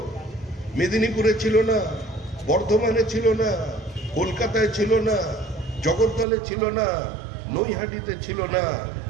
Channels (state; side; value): drops out; left; at 6.2 s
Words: মেদিনীপুরে ছিল না, বর্ধমানে ছিল না, কলকাতায় ছিল না, জগদ্দলে ছিল না, নৈহাটিতে ছিল না,